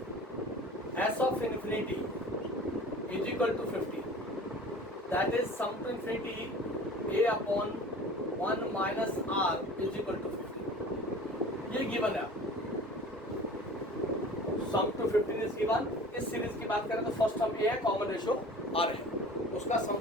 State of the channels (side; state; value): both; normal; correlation 0.42